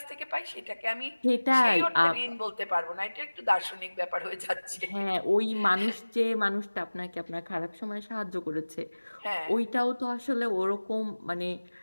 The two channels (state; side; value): inverted; both; correlation -1.00